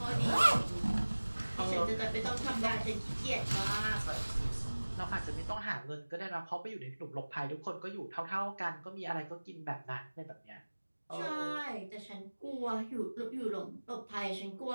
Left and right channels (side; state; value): both; inverted; correlation -1.00